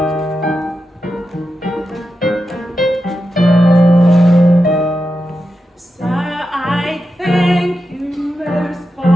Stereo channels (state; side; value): normal; both; correlation 0.89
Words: Sir, I thank you most